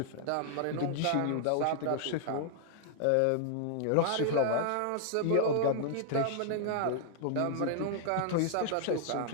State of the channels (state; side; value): different; both; correlation -0.01